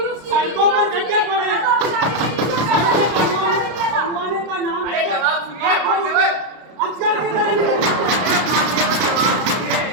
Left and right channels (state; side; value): late; left; 32 ms